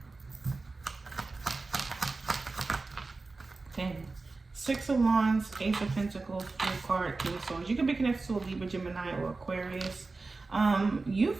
Six of Wands, Ace of Pentacles, Full card, King of Swords. You could be connected to a Libra, Gemini, or Aquarius. You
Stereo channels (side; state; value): left; quieter; 3.7 dB